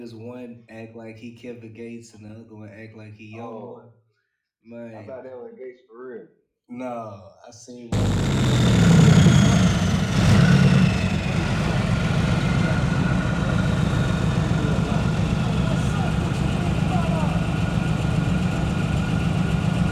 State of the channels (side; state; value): both; identical; correlation 1.00